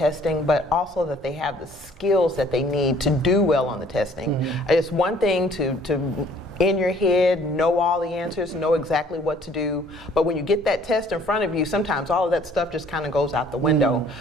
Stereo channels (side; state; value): both; normal; correlation 0.57